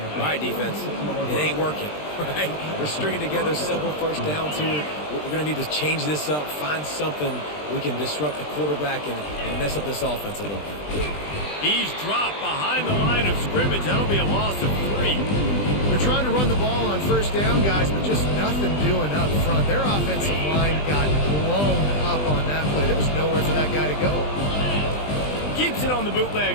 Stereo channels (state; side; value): late; right; 20 ms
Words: Right, defense. It ain't working, right? We're stringing together several first downs here. We're going to need to change this up, find something we can disrupt the quarterback and mess up this offense a little bit. He's dropped behind the line of scrimmage. That'll be a loss of 3. They're trying to run the ball on first down, guys, but just nothing doing up front. Their offensive line got blown up on that play. There was nowhere for that guy to go. Keeps it on the